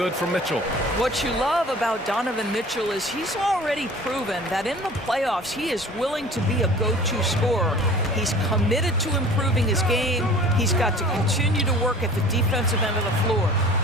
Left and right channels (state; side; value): normal; both; correlation 0.45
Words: from Mitchell. What you love about Donovan Mitchell is he's already proven that in the playoffs he is willing to be a go-to scorer. He's committed to improving his game. He's got to continue to work at the defensive end of the floor.